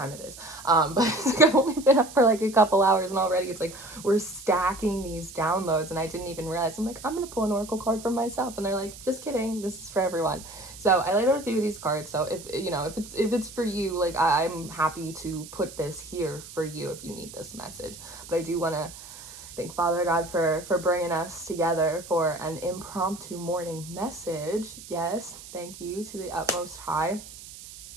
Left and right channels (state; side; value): noise; right; hiss, 15 dB below the sound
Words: it is. But I've only been up for a couple hours, and already it's we're stacking these downloads, and I didn't even realize. I'm I'm gonna pull an oracle card for myself, and they're just kidding, this is for everyone. So I laid out a few of these cards. So if it's for you, I'm happy to put this here for you if you need this message. But I do want to thank Father God for bringing us together for an impromptu morning message. Yes, thank you to the utmost high.